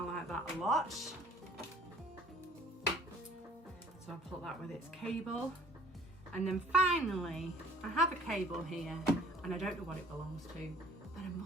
like that a lot. So I'll put that with its cable. And then finally, I have a cable here, and I don't know what it belongs to, but I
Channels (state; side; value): normal; both; correlation 0.53